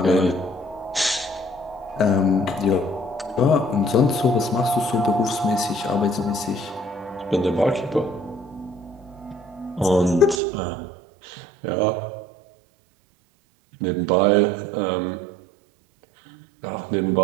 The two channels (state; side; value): drops out; left; at 10.4 s